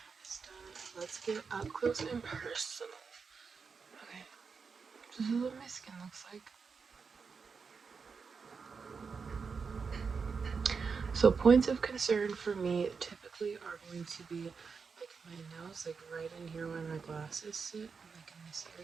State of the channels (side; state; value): left; quieter; 5.4 dB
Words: is done, let's get up close and personal. Okay, this is what my skin looks like. So points of concern for me typically are going to be like my nose, like right in here where my glasses sit, like in this